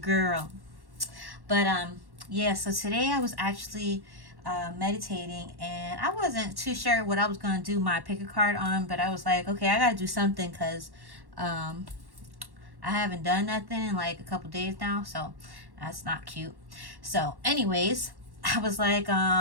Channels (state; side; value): late; left; 1.1 ms